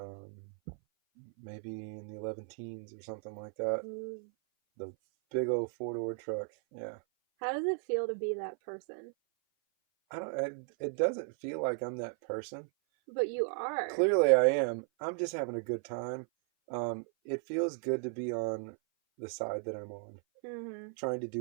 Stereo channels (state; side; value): silent; left; 54 dB below the other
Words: Maybe in the 11 teens or something like that. The big old 4-door truck. Yeah. How does it feel to be that person? It doesn't feel like I'm that person. But you are. Clearly I am. I'm just having a good time. It feels good to be on the side that I'm on. Mm-hmm. Trying to